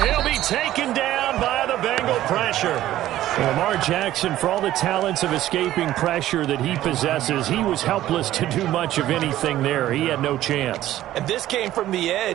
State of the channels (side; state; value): left; quieter; 13.8 dB